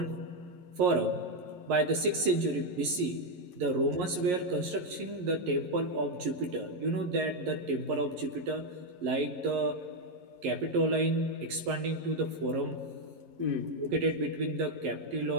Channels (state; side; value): late; left; 11 ms